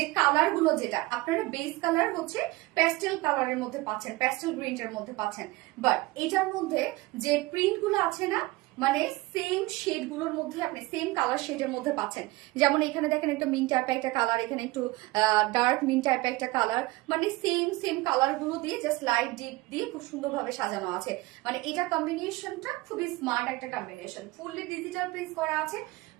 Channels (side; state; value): left; quieter; 20.8 dB